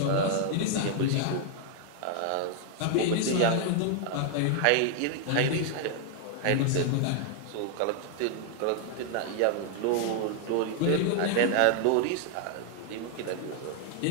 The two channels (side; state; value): both; different; correlation 0.00